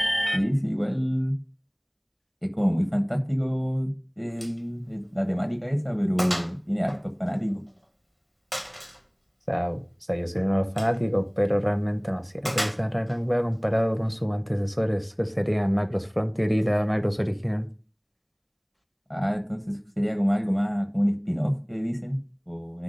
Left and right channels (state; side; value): identical; both; correlation 1.00